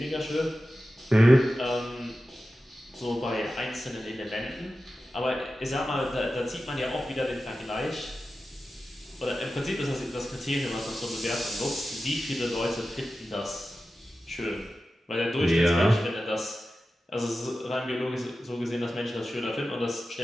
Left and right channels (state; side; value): normal; both; correlation 0.93